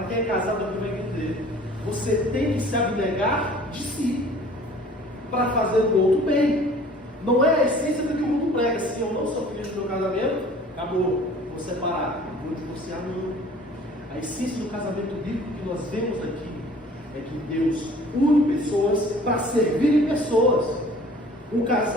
quem é casado aqui vai entender. Você tem que se abnegar de si para fazer o outro bem. Não é a essência do que o mundo prega. Se eu não sou feliz no meu casamento, acabou, vou separar, vou divorciar, não. A essência do casamento bíblico que nós vemos aqui é que Deus une pessoas para servirem pessoas. Um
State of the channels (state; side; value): normal; both; correlation 0.50